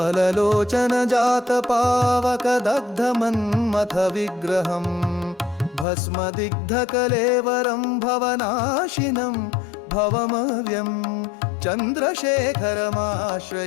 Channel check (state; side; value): drops out; right; at 5.9 s